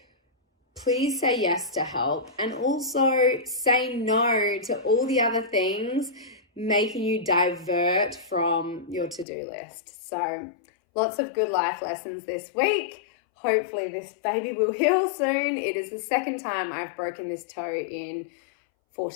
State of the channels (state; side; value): drops out; right; at 9.2 s